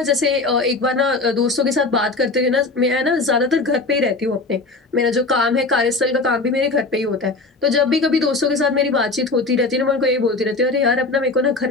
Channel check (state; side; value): quieter; right; 3.5 dB